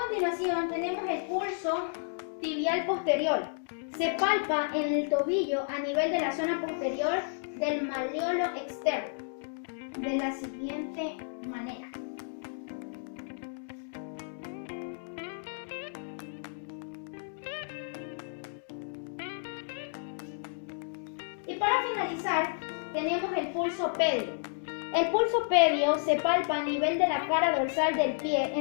tenemos el pulso tibial posterior. Se palpa en el tobillo a nivel de la zona posterior del malleolo externo, de la siguiente manera. Y para finalizar, tenemos el pulso pedio. El pulso pedio se palpa a nivel de la cara dorsal del pie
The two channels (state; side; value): silent; right; digital silence